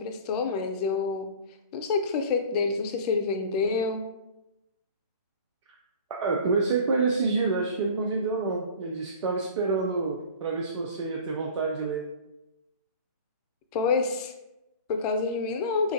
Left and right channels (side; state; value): both; inverted; correlation -0.40